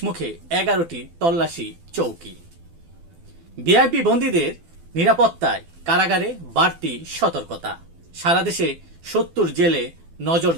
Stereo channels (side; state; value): left; late; 12 ms